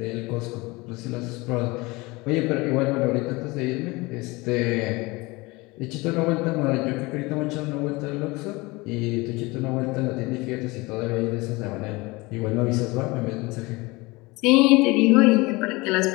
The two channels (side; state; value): right; quieter; 23.5 dB